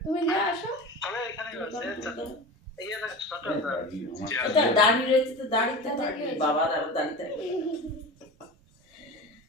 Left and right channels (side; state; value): both; normal; correlation 0.31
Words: তুমি দিয়ে আসো। এটা দাড়ি রয়েছে তো, দাড়িতে থাকবে বাবার, আর দাড়িতে